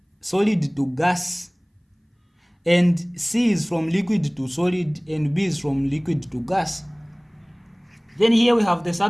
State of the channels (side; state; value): both; identical; correlation 1.00